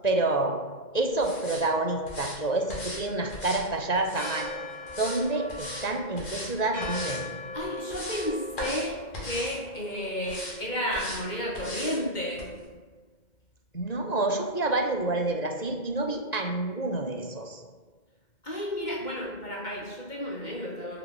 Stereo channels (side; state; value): right; late; 2.1 ms